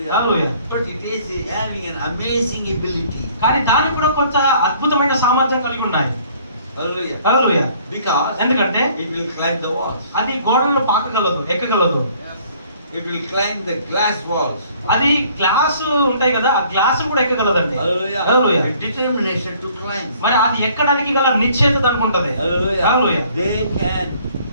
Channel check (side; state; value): both; inverted; correlation -0.58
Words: Hallelujah. But it is having an amazing ability. కానీ దానికి కూడా కొంత అద్భుతమైన సామర్థ్యం కలిగి ఉన్నాయి. Hallelujah. Hallelujah. Because ఎందుకంటే it will climb the walls. అది గోడలను పాకగలదు, ఎక్కగలదు. It will climb the glass walls. అది గ్లాస్ ఉంటాయి కదా, ఆ గ్లాస్ కూడా ఎక్కగలదండి. Hallelujah. Hallelujah. A determination to climb. మరి అది ఎక్కడానికి గల నిశ్చయత దానికి ఉంటది. Hallelujah. Hallelujah. They can